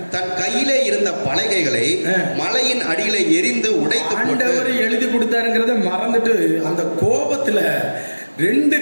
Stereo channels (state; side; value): inverted; both; correlation -1.00